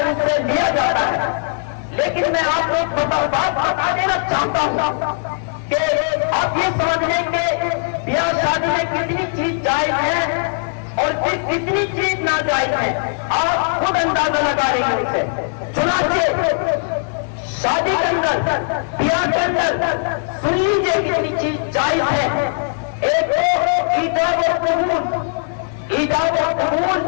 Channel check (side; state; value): right; silent; 63 dB below the other